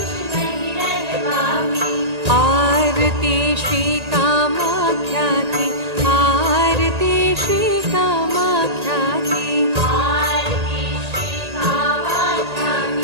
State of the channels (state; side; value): late; left; 1.8 ms